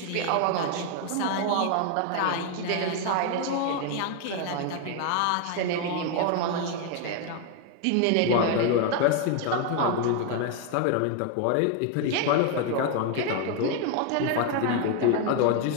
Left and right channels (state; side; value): different; both; correlation 0.01